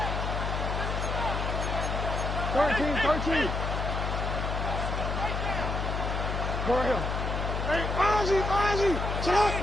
13. Go ahead. Hey, Ozzy. Sit up.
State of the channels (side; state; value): left; noise; hum, 2 dB below the sound